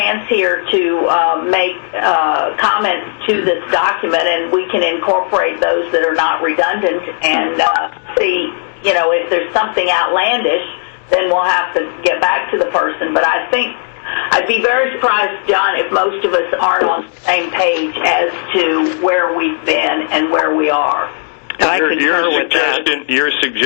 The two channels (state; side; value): silent; right; digital silence